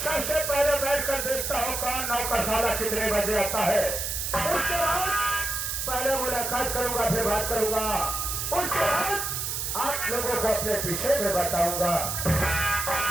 सबसे पहले बैठकर देखता हूँ कौन नौकरशाला कितने बजे आता है। उसके बाद पहले मुलाकात करूंगा, फिर बात करूंगा। उसके बाद आप लोगों को अपने विषय में बताऊंगा।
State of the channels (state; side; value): noise; right; hiss, 2 dB below the sound